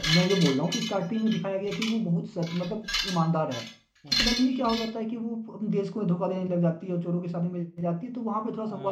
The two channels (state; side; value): identical; both; correlation 1.00